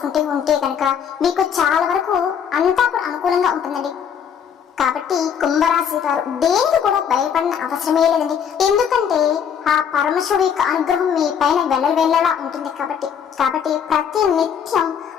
ఉంటే కనుక మీకు చాలా వరకు అంతా కూడా అనుకూలంగా ఉంటుందండి. కాబట్టి కుంభరాశి వారు దేనికి కూడా భయపడిన అవసరమే లేదండి. ఎందుకంటే ఆ పరమశివుడి యొక్క అనుగ్రహం మీ పైన వెళ్ళలా ఉంటుంది. కాబట్టి ప్రతి నిత్యం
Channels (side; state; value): right; quieter; 7.9 dB